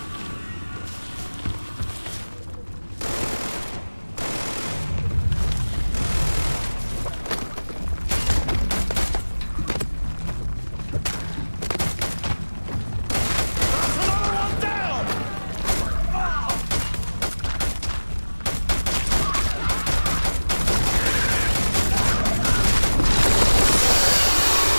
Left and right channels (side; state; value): both; inverted; correlation -1.00